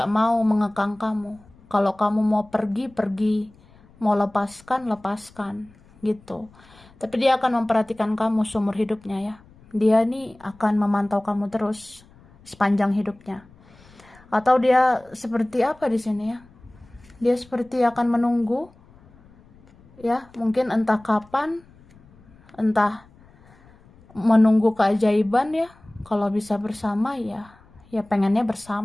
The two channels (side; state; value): left; noise; rumble, 27 dB below the sound